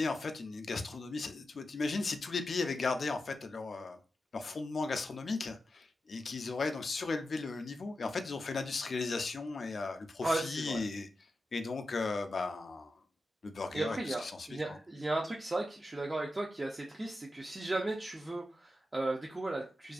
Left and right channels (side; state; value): both; normal; correlation 0.90